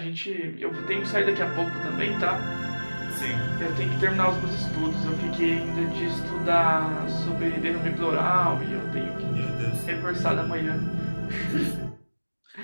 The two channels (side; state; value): both; inverted; correlation -1.00